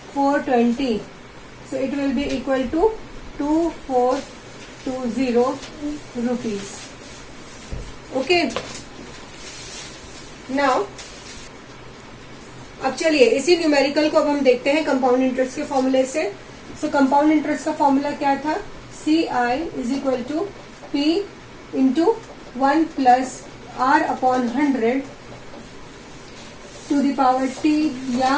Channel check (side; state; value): both; identical; correlation 1.00